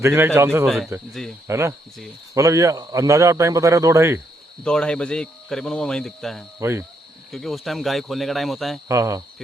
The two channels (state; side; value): normal; both; correlation 0.76